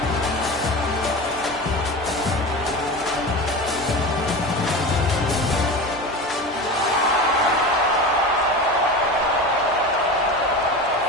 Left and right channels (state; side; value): normal; both; correlation 0.28